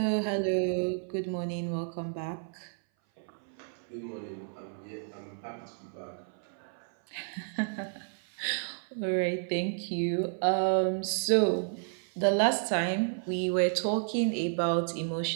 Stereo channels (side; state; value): left; silent; 57 dB below the other